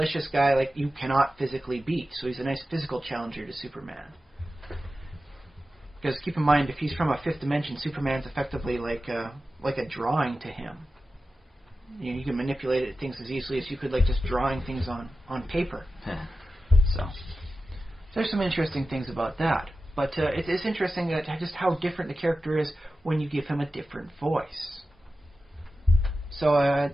guy like you cannot physically beat. So he's a nice physical challenger to Superman. Because keep in mind, if he's from a fifth dimension, Superman's effectively like a drawing to him. You can manipulate things as easily as you could just drawing things on paper. So there's some interesting things about that. But it is interesting that just how different the character is when you give him a different voice. So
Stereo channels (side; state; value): both; normal; correlation 0.93